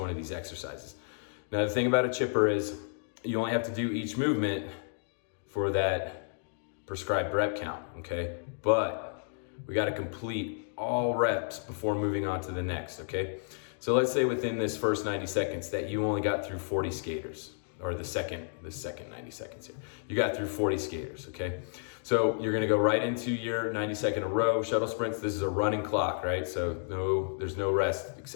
of these exercises. Now the thing about a chipper is you only have to do each movement for that prescribed rep count, okay? But we gotta complete all reps before moving on to the next, okay? So let's say within this first 90 seconds that you only got through 40 skaters, or the second 90 seconds here. You got through 40 skaters, okay? So you're gonna go right into your 90-second row, shuttle sprints. This is a running clock, right? So there's no rest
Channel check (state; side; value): silent; right; digital silence